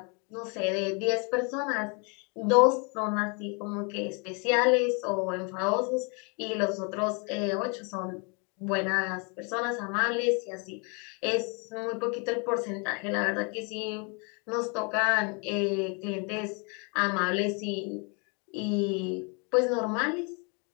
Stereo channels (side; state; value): right; quieter; 34.5 dB